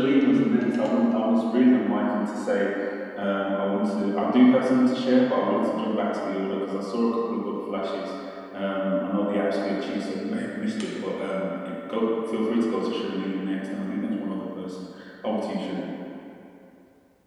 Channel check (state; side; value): identical; both; correlation 1.00